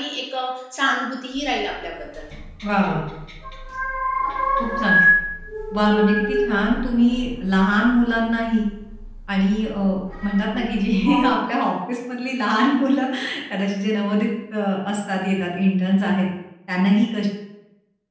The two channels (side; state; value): both; identical; correlation 1.00